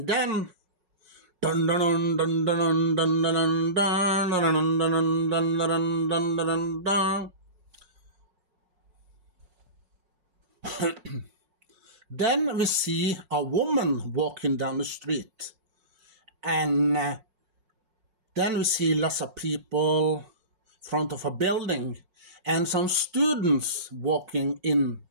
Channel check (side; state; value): left; late; 5.5 ms